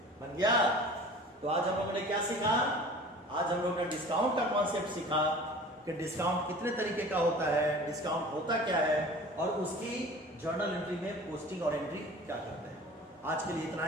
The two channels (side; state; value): both; normal; correlation 0.42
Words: बन गया? तो आज हम लोगों ने क्या सीखा? आज हम लोग ने डिस्काउंट का कॉन्सेप्ट सीखा कि डिस्काउंट कितने तरीके का होता है, डिस्काउंट होता क्या है, और उसकी जर्नल एंट्री में पोस्टिंग और एंट्री क्या करते हैं। आज के लिए इतना